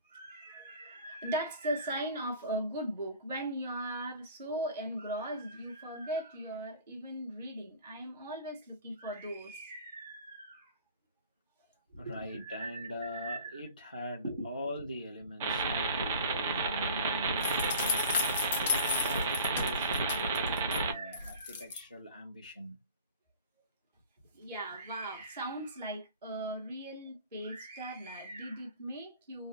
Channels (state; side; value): inverted; both; correlation -0.43